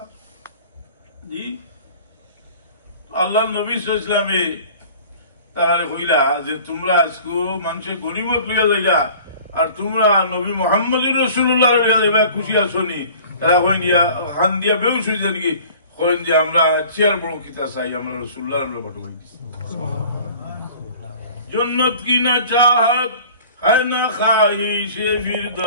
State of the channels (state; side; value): inverted; both; correlation -0.46